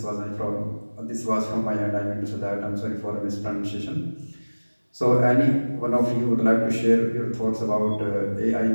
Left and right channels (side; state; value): both; inverted; correlation -1.00